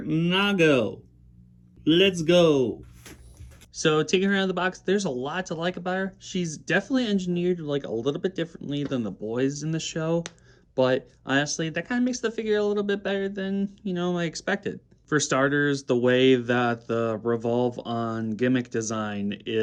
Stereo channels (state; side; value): identical; both; correlation 1.00